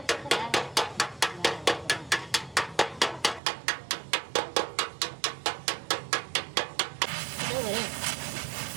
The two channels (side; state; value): left; drops out; at 3.4 s